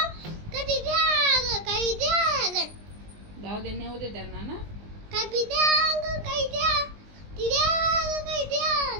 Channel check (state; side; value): late; left; 19 ms